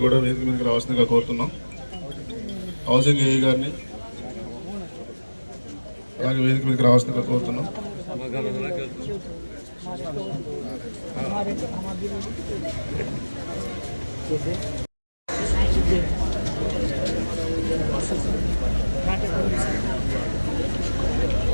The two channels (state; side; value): inverted; both; correlation -1.00